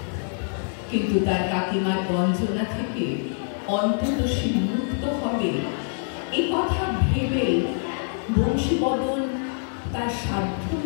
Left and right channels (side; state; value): right; silent; digital silence